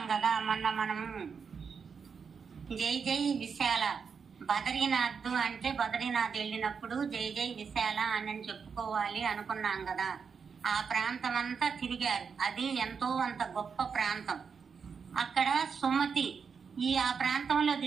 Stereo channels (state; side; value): quieter; left; 6.0 dB